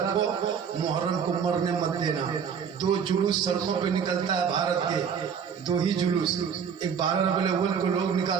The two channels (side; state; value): left; quieter; 7.1 dB